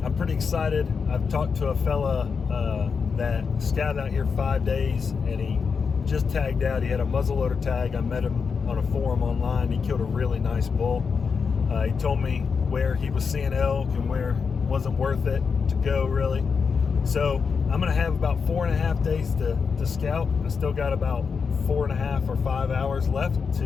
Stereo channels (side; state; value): right; quieter; 5.6 dB